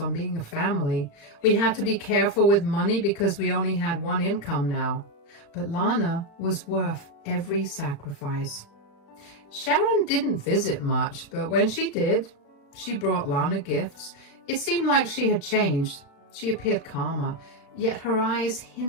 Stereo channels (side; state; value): right; late; 35 ms